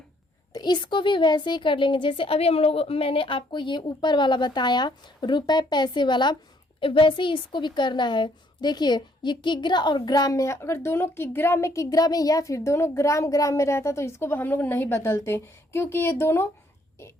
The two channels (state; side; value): normal; both; correlation 0.67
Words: तो इसको भी वैसे ही कर लेंगे जैसे अभी मैंने आपको ये ऊपर वाला बताया रुपए पैसे वाला, वैसे ही इसको भी करना है। देखिए ये किग्रा और ग्राम में है, अगर दोनों किग्रा में या फिर दोनों ग्राम में रहता तो इसको हम लोग नहीं बदलते, क्योंकि ये दोनों